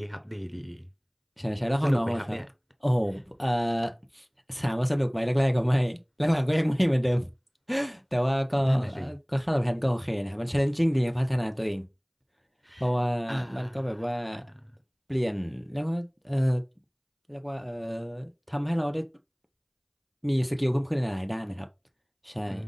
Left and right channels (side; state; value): both; identical; correlation 1.00